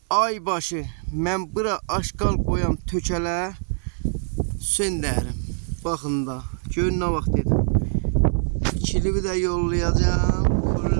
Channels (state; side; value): silent; left; digital silence